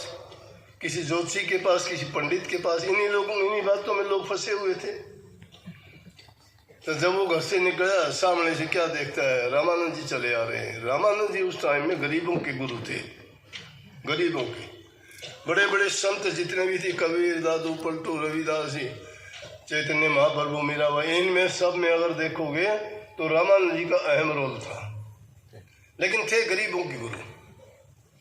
किसी ज्योतिषी के पास, किसी पंडित के पास। इन्हीं बातों में लोग फंसे हुए थे। तो जब वो घर से निकला, सामने से क्या देखता है, रामानंद जी चले आ रहे हैं। रामानंद जी उस टाइम में गरीबों के गुरु थे, गरीबों के। बड़े बड़े संत जितने भी थे, कबीर, दादू, पलटू, रविदास जी, चैतन्य महाप्रभु, मीराबाई, इनमें सब में अगर देखोगे तो रामानंद जी का अहम रोल था। लेकिन थे गरीबों के गुरु।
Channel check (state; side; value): identical; both; correlation 1.00